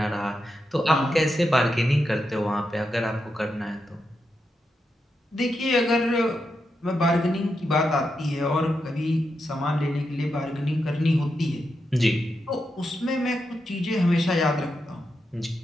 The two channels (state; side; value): normal; both; correlation 0.86